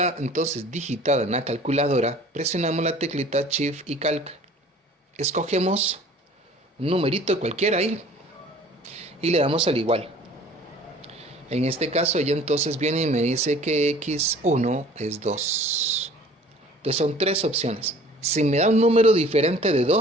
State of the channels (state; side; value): normal; both; correlation 0.49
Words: entonces digitada en la calculadora, presionamos la teclita shift y calc. Escogemos un numerito cualquiera ahí y le damos al igual. En este caso ella entonces viene y me dice que x1 es 2. Entonces son 3 opciones. Si me da un número diferente de